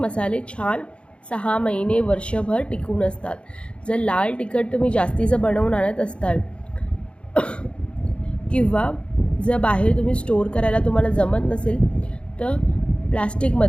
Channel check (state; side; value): late; right; 0.058 ms